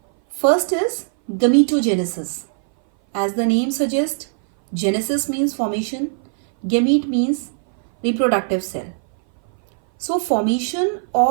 first is gametogenesis. As the name suggests, genesis means formation, gamete means reproductive cell. So formation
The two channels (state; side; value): silent; left; 59 dB below the other